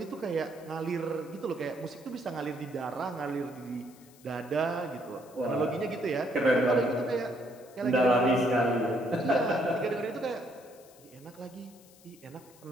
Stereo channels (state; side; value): noise; left; hiss, 25 dB below the sound